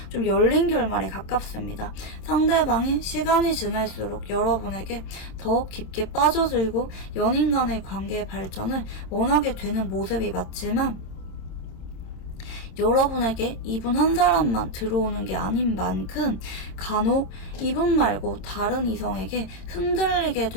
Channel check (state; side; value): late; right; 26 ms